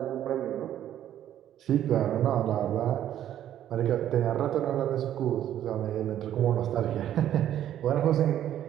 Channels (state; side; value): quieter; left; 11.3 dB